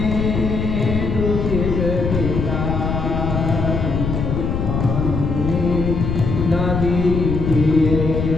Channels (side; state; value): left; noise; rumble, 2 dB below the sound